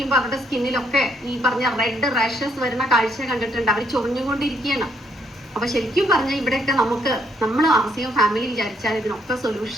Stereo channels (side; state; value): both; normal; correlation 0.70